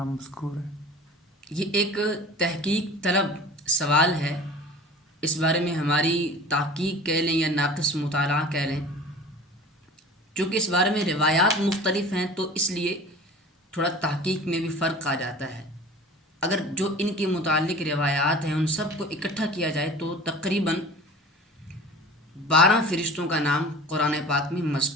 مذکور ہیں؟ یہ ایک تحقیق طلب سوال ہے. اس بارے میں ہماری تحقیق کہہ لیں یا ناقص مطالعہ کہہ لیں. چونکہ اس بارے میں روایات مختلف ہیں تو اس لیے تھوڑا تحقیق میں بھی فرق آ جاتا ہے. اگر جو ان کے متعلق روایات ہیں ان سب کو اکٹھا کیا جائے تو تقریباً 12 فرشتوں کا نام قرآن پاک میں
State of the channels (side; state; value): both; normal; correlation 0.41